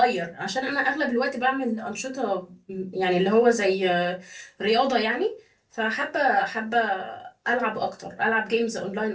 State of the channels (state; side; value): identical; both; correlation 1.00